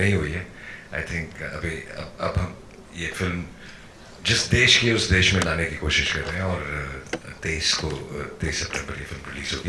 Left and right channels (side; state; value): both; identical; correlation 1.00